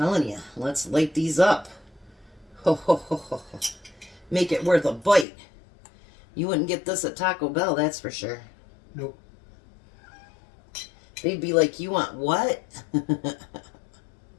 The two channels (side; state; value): right; drops out; at 5.2 s